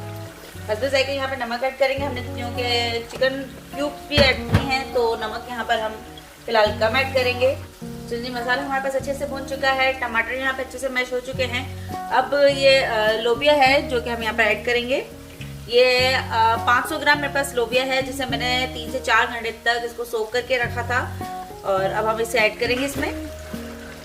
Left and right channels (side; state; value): both; identical; correlation 1.00